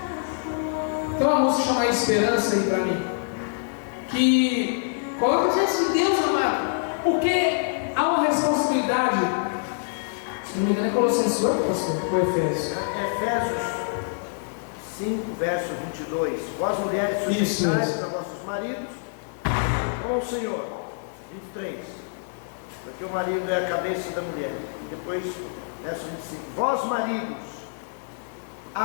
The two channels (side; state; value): right; silent; digital silence